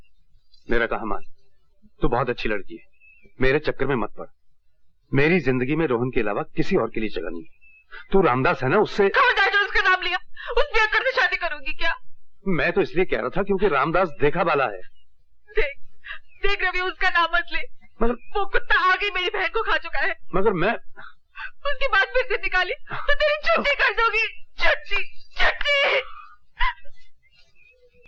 मेरा कहा मान, तू बहुत अच्छी लड़की है, मेरे चक्कर में मत पड़। मेरी जिंदगी में रोहन के अलावा किसी और के लिए जगह नहीं है। तू रामदास है ना, उससे उसका नाम लिया, उस बेअक्कड़ से शादी करूंगी क्या? मैं तो इसलिए कह रहा था क्योंकि रामदास देखा वाला है। देख रवि, उसका नाम मत ले। मगर वो कुत्ता आगे मेरी बहन को खा चुका है। मगर मैं उसकी बात फिर से निकाली तो तेरी छुट्टी कर दूंगी। छुट्टी।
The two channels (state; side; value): identical; both; correlation 1.00